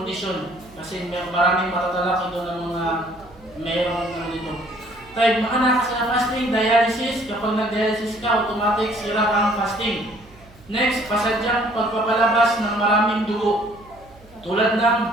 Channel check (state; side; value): noise; right; hum, 25 dB below the sound